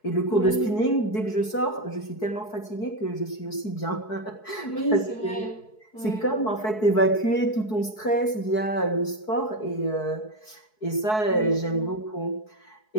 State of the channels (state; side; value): late; right; 4.7 ms